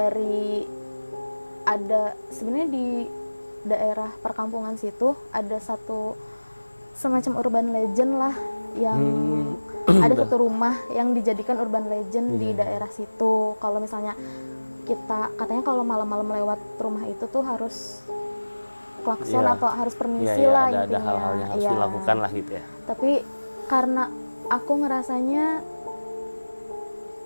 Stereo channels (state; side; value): inverted; both; correlation -1.00